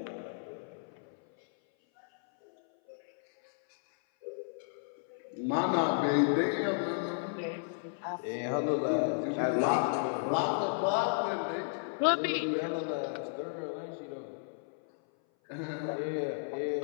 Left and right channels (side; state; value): right; silent; 56 dB below the other